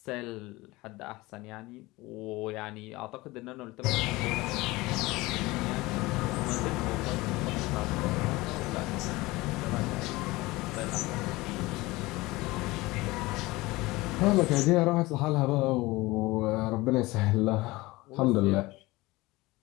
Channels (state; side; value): quieter; right; 20.9 dB